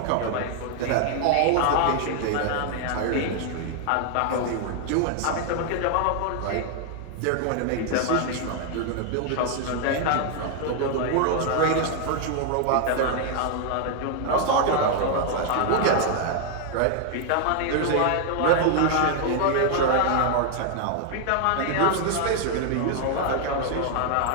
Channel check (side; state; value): both; different; correlation 0.00